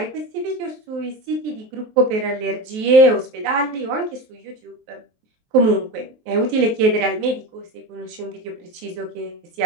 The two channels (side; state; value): left; late; 23 ms